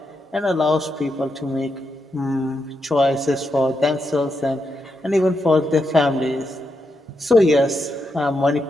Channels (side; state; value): both; normal; correlation 0.83